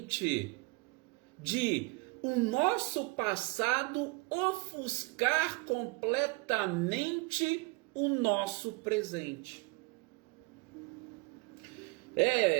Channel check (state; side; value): quieter; left; 26.5 dB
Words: de o nosso passado ofuscar completamente o nosso presente.